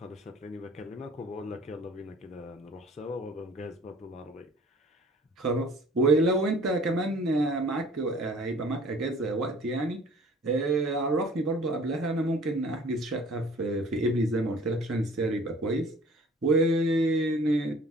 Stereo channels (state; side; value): normal; both; correlation 0.51